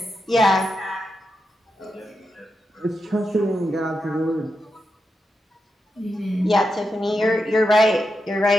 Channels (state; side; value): normal; both; correlation 0.87